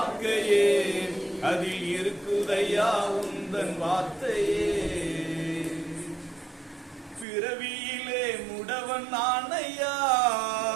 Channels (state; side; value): drops out; left; at 7.2 s